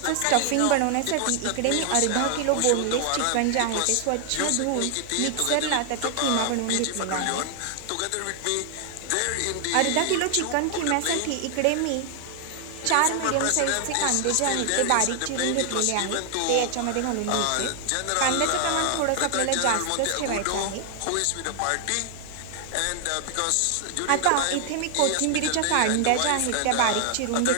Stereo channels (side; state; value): both; different; correlation 0.00